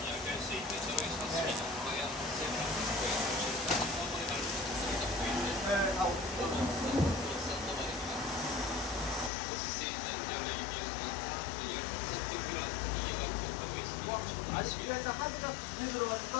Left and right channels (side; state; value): right; drops out; at 9.3 s